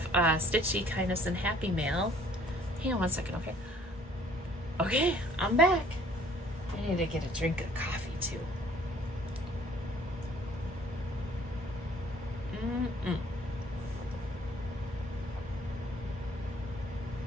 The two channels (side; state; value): both; normal; correlation 0.57